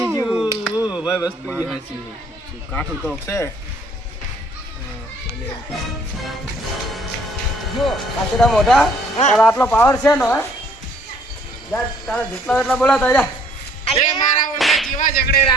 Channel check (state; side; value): normal; both; correlation 0.60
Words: ભાઈ વસ્તુ એ સાચી કાઠું તો છે. જો કાચડા મોઢા તારા આટલો પાવર છે ને હે? જા તારા જેટલા એટલા બોલાતા જા.